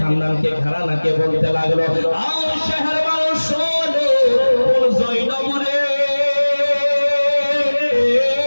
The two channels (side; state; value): both; inverted; correlation -1.00